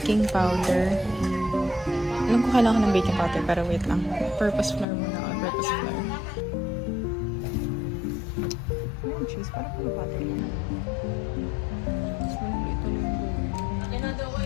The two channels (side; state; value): right; drops out; at 4.9 s